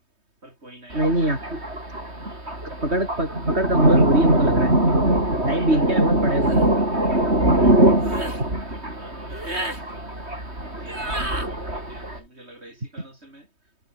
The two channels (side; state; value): left; late; 3.2 ms